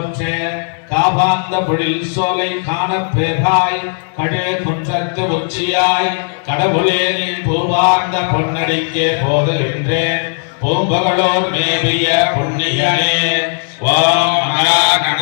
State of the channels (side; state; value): right; silent; 57 dB below the other